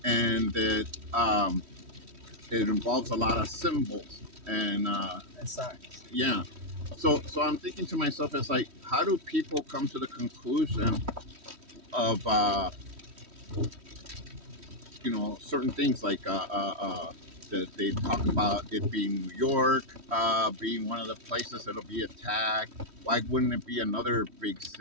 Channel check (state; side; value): late; left; 3.1 ms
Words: and that it involves a lot of symbols And signs. yeah. So I'm thinking to myself, it's like, how do people come to the conclusion of certain things like that they talk about it being New York being one of the places that'll be attacked. Why wouldn't it be another big